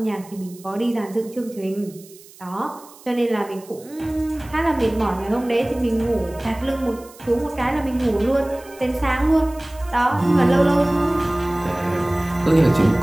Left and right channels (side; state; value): right; noise; hiss, 22 dB below the sound